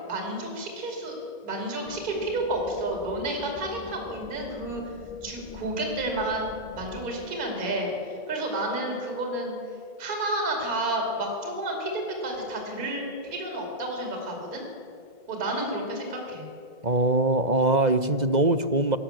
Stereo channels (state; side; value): late; left; 2.0 ms